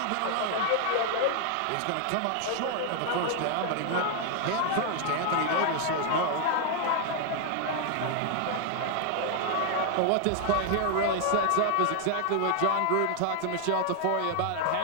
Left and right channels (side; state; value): both; different; correlation 0.00